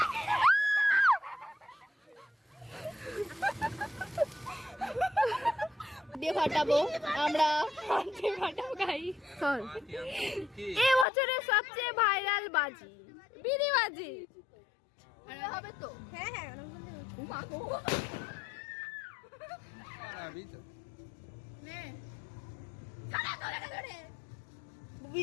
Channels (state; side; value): drops out; right; at 11.1 s